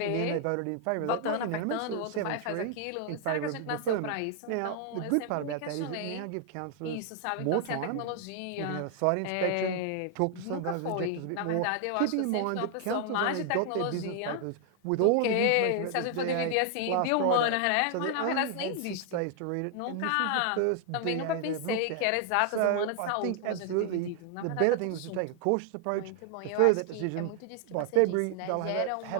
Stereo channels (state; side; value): different; both; correlation 0.00